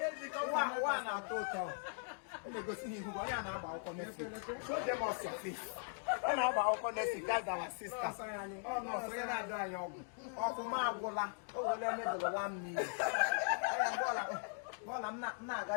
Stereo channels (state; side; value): silent; right; 51 dB below the other